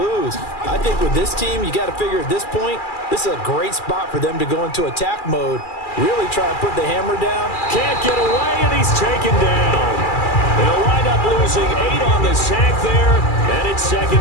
I think with this team, you got to figure at this point, this is a great spot for them to go into attack mode, really try and put the hammer down. Can't get away, and he's taken down. They'll wind up losing 8 on the sack there, and it's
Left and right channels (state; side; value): late; right; 2.4 ms